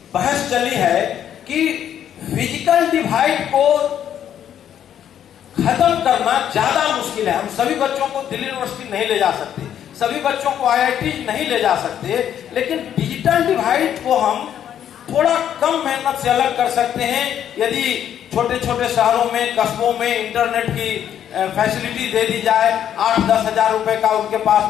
बहस चली है कि फिजिकल डिवाइड को खत्म करना ज्यादा मुश्किल है। हम सभी बच्चों को दिल्ली यूनिवर्सिटी नहीं ले जा सकते, सभी बच्चों को आईआईटी नहीं ले जा सकते, लेकिन डिजिटल डिवाइड को हम थोड़ा कम मेहनत से अलग कर सकते हैं यदि छोटे छोटे शहरों में, कस्बों में इंटरनेट की फैसिलिटी दे दी जाए। 8-10 हजार रुपए का उनके पास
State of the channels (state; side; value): quieter; right; 9.9 dB